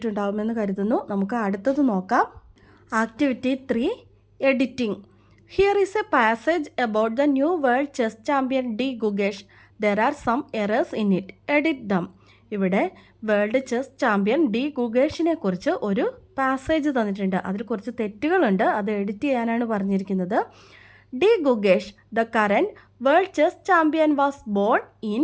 കരുതുന്നു. നമുക്ക് അടുത്തത് നോക്കാം. Activity 3, editing. Here is a passage about the new world chess champion D Gukesh. There are some errors in it. Edit them. ഇവിടെ വേൾഡ് ചെസ് ചാമ്പ്യൻ ഡി ഗുഗേഷിനെ കുറിച്ച് ഒരു പാസേജ് തന്നിട്ടുണ്ട്. അതിൽ കുറച്ച് തെറ്റുകളുണ്ട്. അത് എഡിറ്റ് ചെയ്യാനാണ് പറഞ്ഞിരിക്കുന്നത്. D Gukesh, the current world chess champion was born in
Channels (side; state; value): both; identical; correlation 1.00